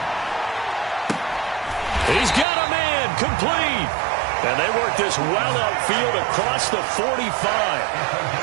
He's got a man complete. And they work this well upfield across the 45.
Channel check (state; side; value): drops out; left; at 2.5 s